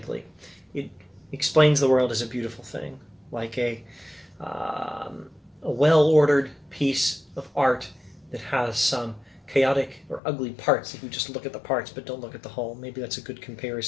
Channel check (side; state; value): right; drops out; at 10.2 s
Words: It explains the world as a beautiful thing, like a well-ordered piece of art that has some chaotic or ugly parts if you just look at the parts but don't look at the whole. Maybe that's a good